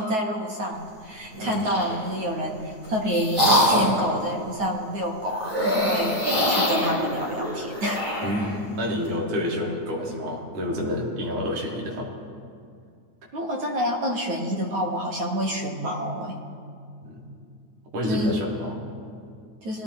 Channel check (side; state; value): left; late; 9.3 ms